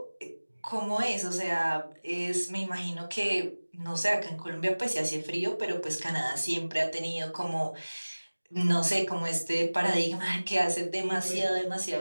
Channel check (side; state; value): both; inverted; correlation -1.00